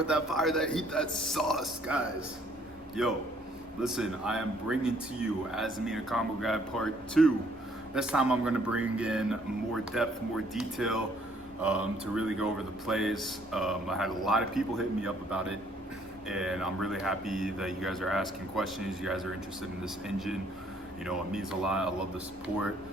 that fire, that heat, that sauce, guys. Yo, listen, I am bringing to you Azamina Combo Guide Part 2. This time I'm going to bring in more depth, more detail to really go over the plays. I had a lot of people hitting me up about it, and I'm really happy that you guys are asking questions. You guys are interested in this engine. You know, it means a lot. I love the support.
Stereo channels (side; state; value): both; normal; correlation 0.64